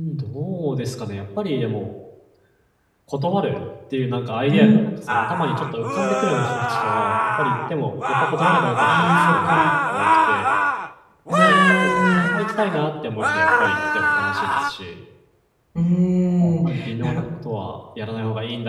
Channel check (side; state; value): both; identical; correlation 1.00